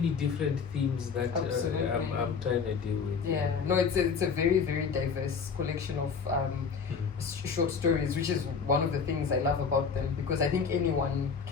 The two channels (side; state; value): right; quieter; 5.8 dB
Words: different themes that I'm trying to deal with. Yeah, no, it's a very, very diverse collection of short stories, which is one of the things I love about them, because I think anyone